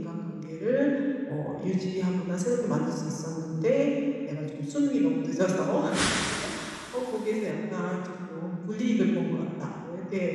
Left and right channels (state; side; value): identical; both; correlation 1.00